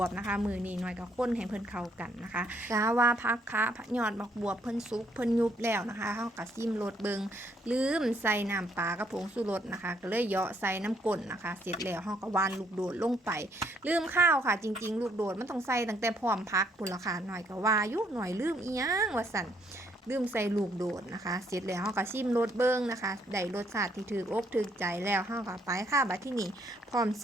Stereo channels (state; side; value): normal; both; correlation 0.69